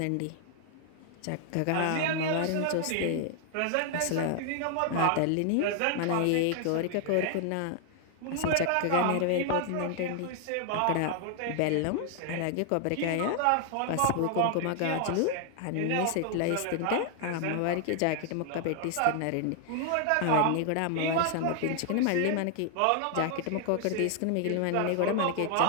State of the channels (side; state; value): both; different; correlation 0.00